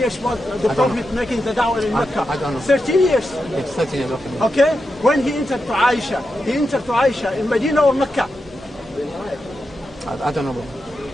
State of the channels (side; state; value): both; normal; correlation 0.88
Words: was the Prophet making the da'wah in Mecca? I don't know. 13 years. It's 13 years, okay. Okay. When he entered to Aisha, in Medina or Mecca? I don't know.